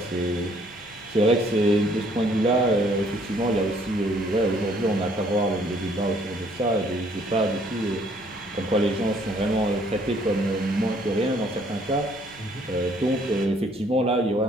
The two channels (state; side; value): noise; left; hum, 24 dB below the sound